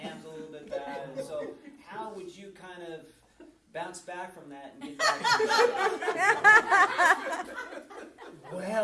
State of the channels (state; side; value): identical; both; correlation 1.00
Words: a little bit bad, and so how would you kind of bounce back from that and get back to the